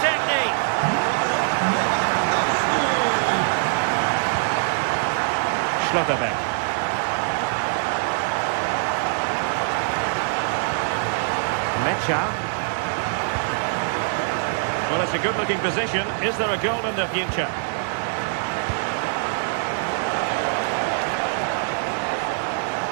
Schlotterbeck. Mecha. Well, it's a good-looking position. Is there a goal in the future?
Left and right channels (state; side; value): silent; left; digital silence